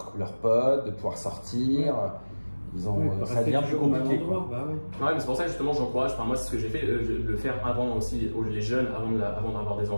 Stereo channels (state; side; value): inverted; both; correlation -1.00